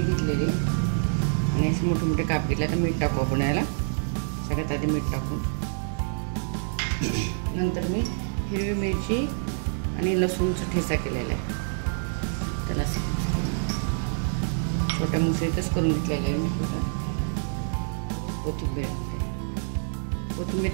घेतलेली आहे आणि असे मोठे मोठे काप घेतले। तर मीठ टाकू आपण याला, सगळ्यात आधी मीठ टाकू, नंतर मी हिरवी मिरची आणि लसूणचा ठेचा केलेला आहे, त्याला छोट्या मुसळीतच करून घेतलेलं आहे मी। कोथिंबीर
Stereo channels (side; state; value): left; silent; digital silence